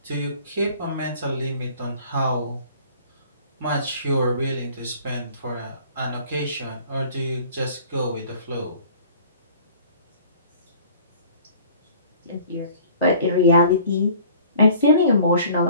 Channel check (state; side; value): inverted; both; correlation -0.50